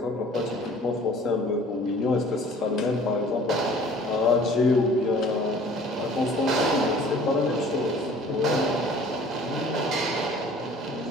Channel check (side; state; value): both; normal; correlation 0.50